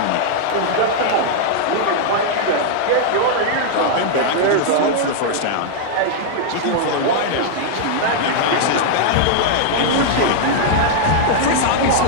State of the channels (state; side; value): different; both; correlation -0.01